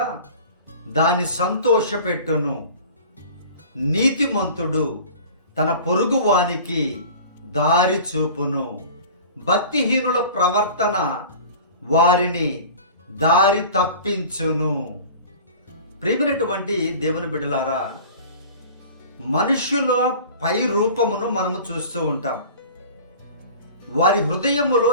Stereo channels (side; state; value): both; inverted; correlation -0.41